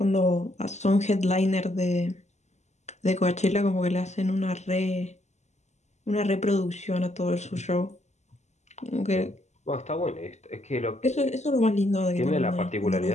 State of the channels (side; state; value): right; late; 0.33 ms